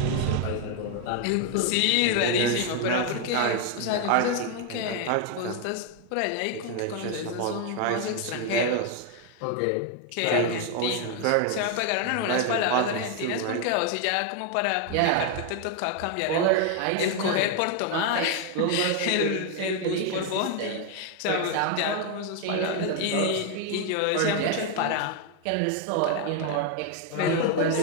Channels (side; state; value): both; different; correlation 0.01